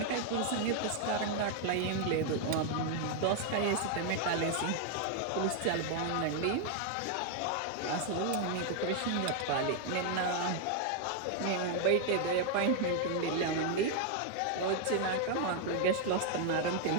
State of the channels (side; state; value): both; different; correlation 0.00